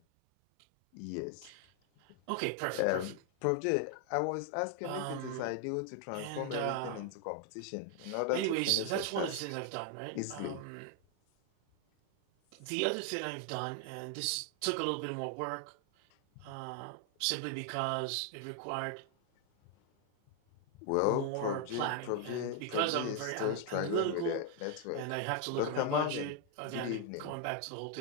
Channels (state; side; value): different; both; correlation 0.00